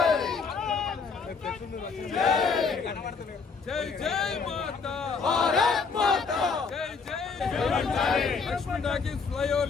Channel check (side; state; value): right; quieter; 5.0 dB